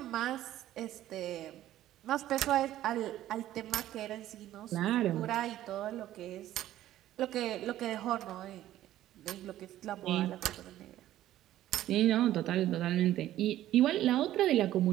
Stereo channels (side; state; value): left; quieter; 13.5 dB